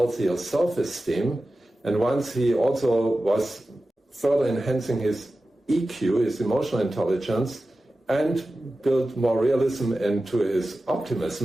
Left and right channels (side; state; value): both; normal; correlation 0.94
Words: self-esteem, and once he also was further enhancing his EQ, his emotional intelligence, and built more realism into his